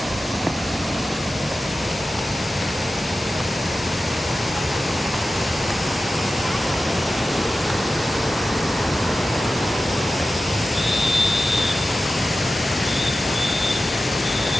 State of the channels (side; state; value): both; normal; correlation 0.94